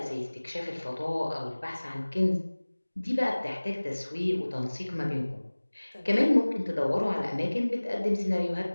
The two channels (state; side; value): inverted; both; correlation -1.00